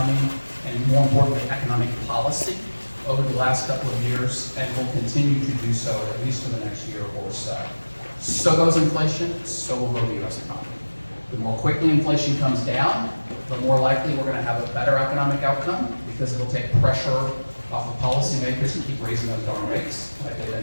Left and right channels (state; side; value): inverted; both; correlation -1.00